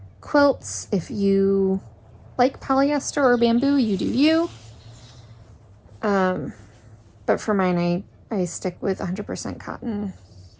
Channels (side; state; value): both; identical; correlation 1.00